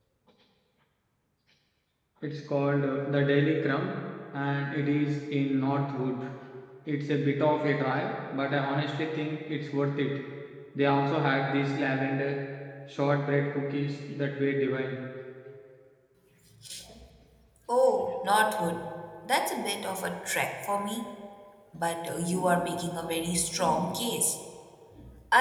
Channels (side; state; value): both; identical; correlation 1.00